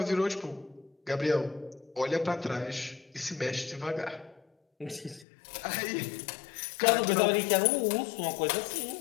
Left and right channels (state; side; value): drops out; right; at 5.2 s